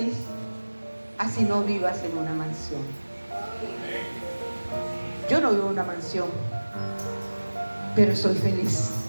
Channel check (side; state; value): both; inverted; correlation -1.00